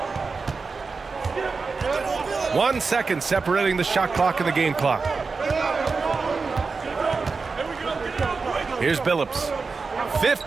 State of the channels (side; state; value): left; quieter; 4.5 dB